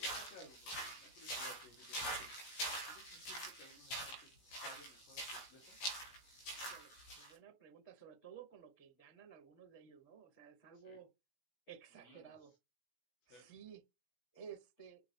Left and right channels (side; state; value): right; late; 16 ms